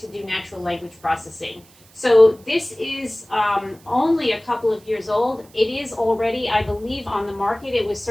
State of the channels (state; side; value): noise; right; hiss, 27 dB below the sound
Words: do natural language processing. So this is only a couple of years old. It is already, I believe, on the market. It was